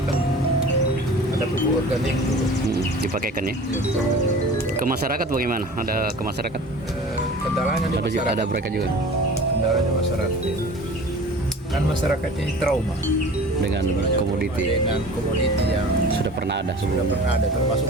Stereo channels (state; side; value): normal; both; correlation 0.41